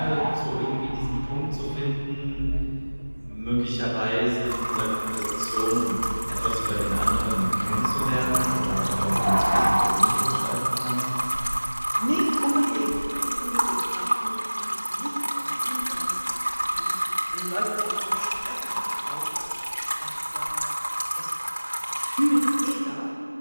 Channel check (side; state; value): both; inverted; correlation -1.00